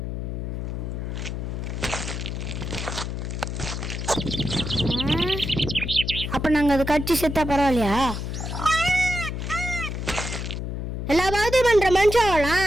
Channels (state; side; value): noise; left; hum, 4 dB below the sound